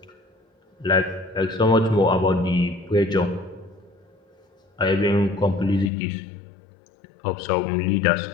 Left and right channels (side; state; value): right; drops out; at 5.9 s